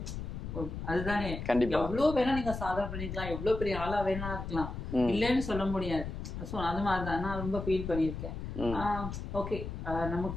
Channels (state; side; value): noise; left; rumble, 6 dB below the sound